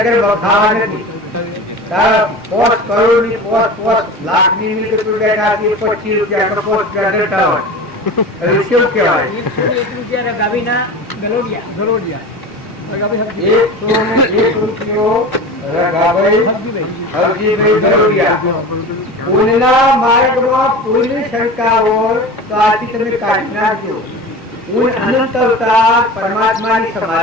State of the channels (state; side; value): normal; both; correlation 0.32